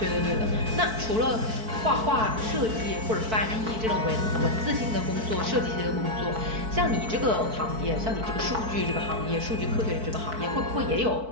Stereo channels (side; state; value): left; late; 4.6 ms